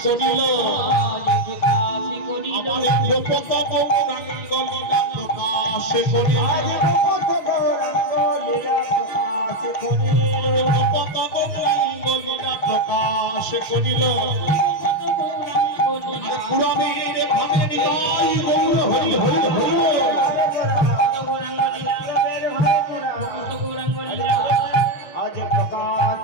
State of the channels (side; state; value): right; late; 6.3 ms